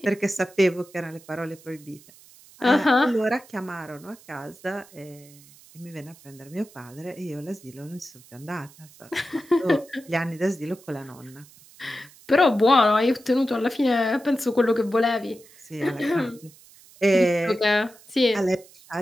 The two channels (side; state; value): right; noise; hiss, 24 dB below the sound